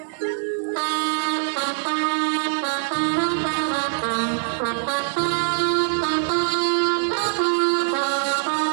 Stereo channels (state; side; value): silent; left; 63 dB below the other